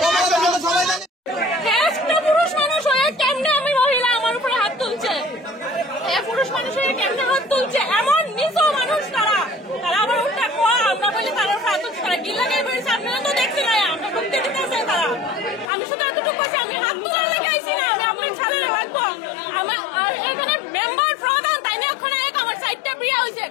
সবাই জানে। একটা পুরুষ মানুষ হয়ে কেমনে আমি মহিলা আমার উপরে হাত তুলছে, পুরুষ মানুষ হয়ে কেমনে হাত তুলছে, এমন নিজ মানুষ তারা আবার উল্টা কোয়া আমরা বলি তারা হাত তুলছে, তারা কি লাগে বলছে আপনারা তো দেখছি না, আমরা ঢুকতে দিতেছে তারা। আমি শুধু এতটুকু বলছি আমি হাত তোলার লেগে আইছি না, আমি আপনার ছাড়া রাখবো আমার। আর এখানে মেম্বার প্রধান তাই না এখন আমার সাইডটা বিয়ে হয়েছে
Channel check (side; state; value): right; drops out; at 15.7 s